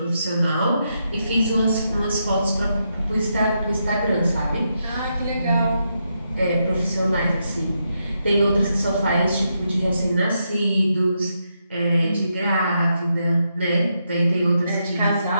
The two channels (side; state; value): both; inverted; correlation -0.82